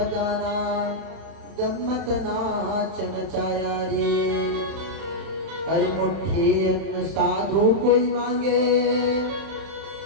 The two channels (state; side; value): late; left; 31 ms